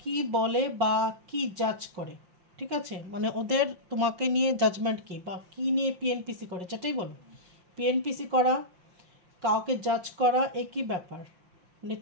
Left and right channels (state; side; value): late; left; 5.7 ms